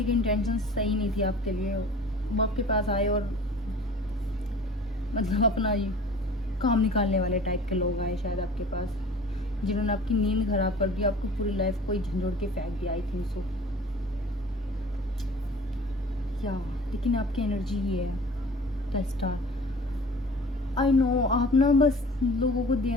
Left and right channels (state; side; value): normal; both; correlation 0.44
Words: की इंटेंशन सही नहीं थी आपके लिए, वो आपके पास आए और मतलब अपना ये काम निकालने वाले टाइप के लोग आए शायद आपके पास, जिन्होंने आपकी नींद खराब कर दी, आपकी पूरी लाइफ को झंझोड़ के फेंक दिया। आई थिंक सो क्या, लेकिन आपकी एनर्जी ही है द स्टार। आई नो आप ना बस लोगों को